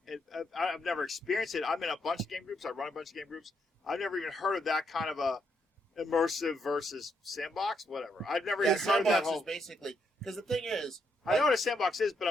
I've never experienced it. I'm in a bunch of game groups. I run a bunch of game groups. I've never even heard of that kind of a immersive versus sandbox. Whatever. I've never yeah, even heard of that sandbox whole. is basically because the thing is, I know what a sandbox is, but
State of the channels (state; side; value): normal; both; correlation 0.77